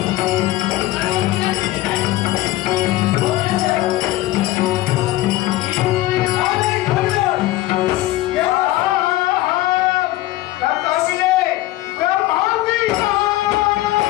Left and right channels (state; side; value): quieter; right; 16.8 dB